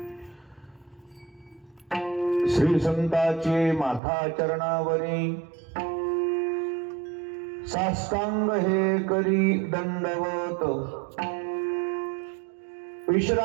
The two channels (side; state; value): left; drops out; at 4.0 s